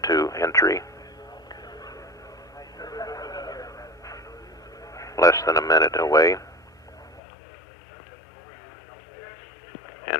entry. Less than a minute away.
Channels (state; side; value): drops out; right; at 7.2 s